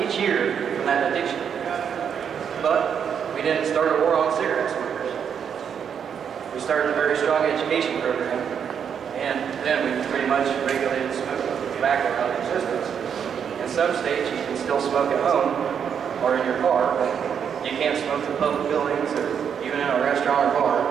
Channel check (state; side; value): quieter; left; 7.7 dB